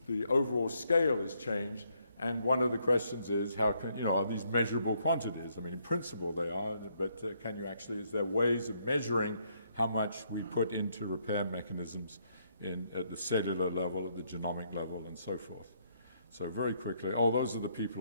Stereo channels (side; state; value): both; inverted; correlation -0.72